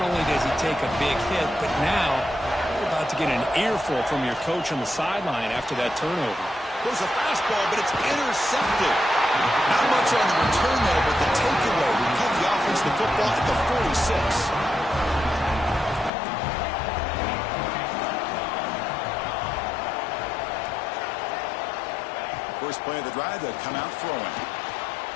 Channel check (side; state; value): right; drops out; at 16.1 s